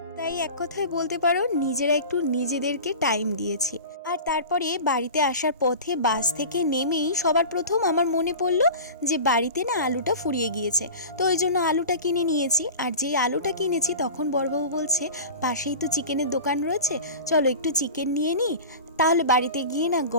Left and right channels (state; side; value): inverted; both; correlation -0.34